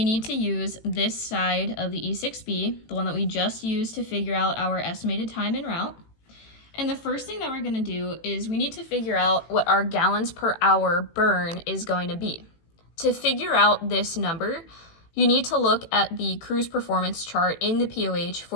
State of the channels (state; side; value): late; right; 18 ms